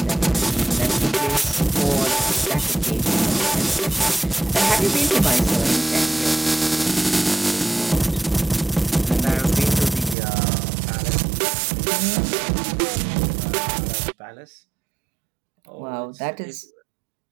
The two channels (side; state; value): left; drops out; at 10.2 s